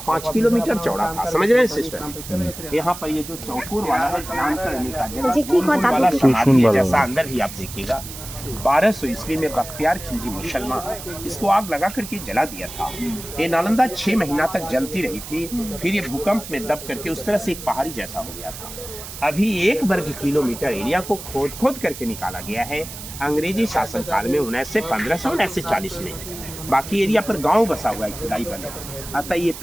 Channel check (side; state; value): right; noise; hiss, 12 dB below the sound